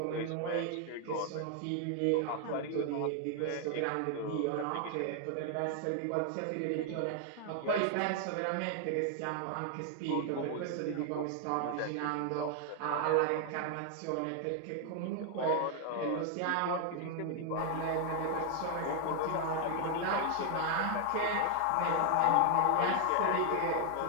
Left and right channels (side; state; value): both; different; correlation 0.00